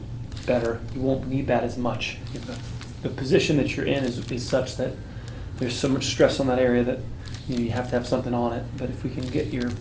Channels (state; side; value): identical; both; correlation 1.00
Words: better, you won't need that as much. If the position that you're in is such that there's so much stress on that area that you have to have something on it. But if we can